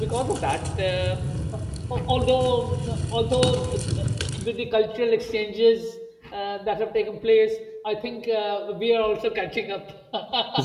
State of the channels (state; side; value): identical; both; correlation 1.00